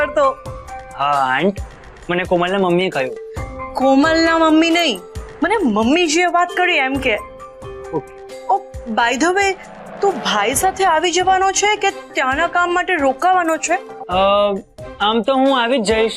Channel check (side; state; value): both; identical; correlation 1.00